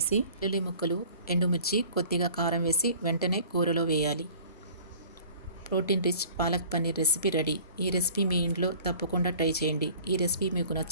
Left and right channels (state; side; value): inverted; both; correlation -0.47